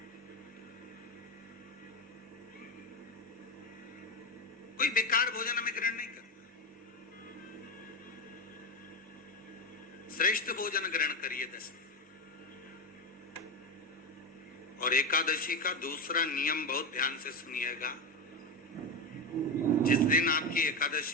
कोई बेकार भोजन हमें ग्रहण नहीं करना, श्रेष्ठ भोजन ग्रहण करिए दशमी। और एकादशी का दूसरा नियम बहुत ध्यान से सुनिएगा। जिस दिन आपकी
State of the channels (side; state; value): both; normal; correlation 0.15